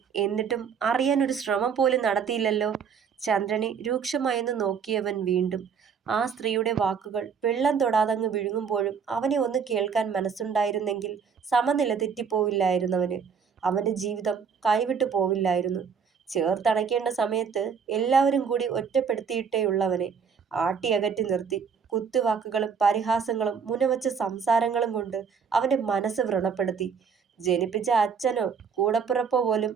എന്നിട്ടും അറിയാൻ ഒരു ശ്രമം പോലും നടത്തിയില്ലല്ലോ. ചന്ദ്രനെ രൂക്ഷമായെന്ന് നോക്കിയവൻ വീണ്ടും. ആ സ്ത്രീയുടെ വാക്കുകൾ വെള്ളം തൊടാതങ്ങ് വിഴുങ്ങുമ്പോഴും അവനെ ഒന്ന് കേൾക്കാൻ മനസ്സുണ്ടായിരുന്നെങ്കിൽ സമനില തെറ്റിപ്പോവില്ലായിരുന്നവന്. അവന്റെ ജീവിതം കൈവിട്ടു പോവില്ലായിരുന്നു. ചേർത്തണയ്ക്കേണ്ട സമയത്ത് എല്ലാവരും കൂടി ഒറ്റപ്പെടുത്തിയിട്ടേയുള്ളവനെ ആട്ടിയകറ്റി നിർത്തി. കുത്തുവാക്കുകളും പരിഹാസങ്ങളും മുനവച്ച സംസാരങ്ങളും കൊണ്ട് അവന്റെ മനസ്സ് വ്രണപ്പെടുത്തി. ജനിപ്പിച്ച അച്ഛനോ കൂടപ്പിറപ്പോ പോലും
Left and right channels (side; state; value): left; quieter; 6.4 dB